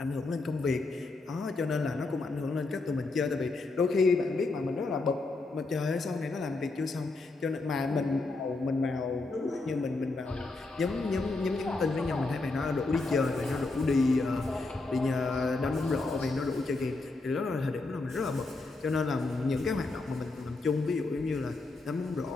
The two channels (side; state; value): right; quieter; 3.4 dB